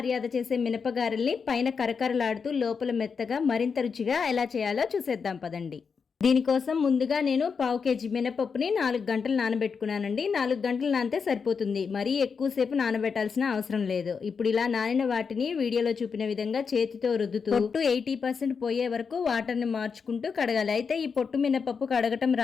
చేసే మినపగారెల్ని పైన కరకరలాడుతూ లోపల మెత్తగా మరింత రుచిగా ఎలా చేయాలో చూసేద్దాం పదండి. దీనికోసం ముందుగా నేను 1/2 kg మినపప్పుని 4 గంటలు నానబెట్టుకున్నానండి. 4 గంటలు నానితే సరిపోతుంది, మరీ ఎక్కువసేపు నానబెట్టాల్సిన అవసరం లేదు. ఇప్పుడు ఇలా నానిన వాటిని వీడియోలో చూపిన విధంగా చేతితో రుద్దుతూ పొట్టు 80% పోయే వరకు వాటర్ని మార్చుకుంటూ కడగాలి. అయితే ఈ పొట్టు మినపప్పు కడగటం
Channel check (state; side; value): quieter; right; 5.7 dB